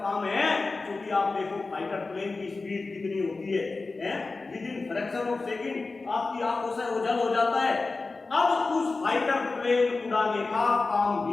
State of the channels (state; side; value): quieter; right; 3.8 dB